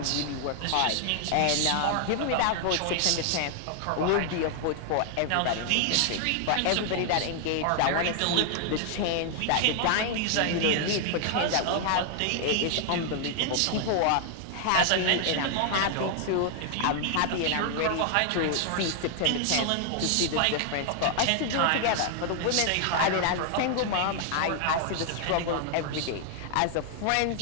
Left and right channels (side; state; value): both; different; correlation 0.00